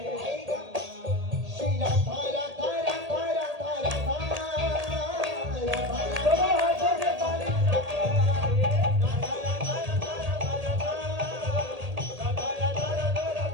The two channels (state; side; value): late; left; 1.8 ms